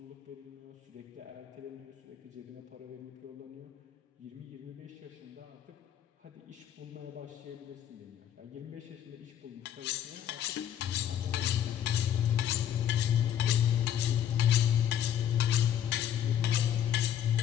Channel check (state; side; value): quieter; right; 10.0 dB